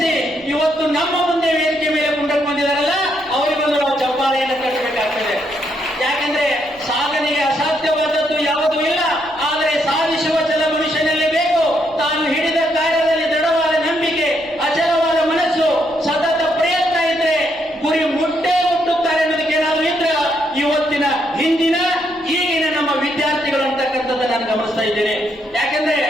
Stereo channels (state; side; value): noise; left; rumble, 28 dB below the sound